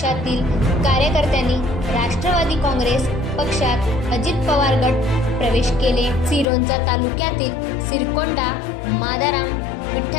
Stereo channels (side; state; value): right; drops out; at 6.5 s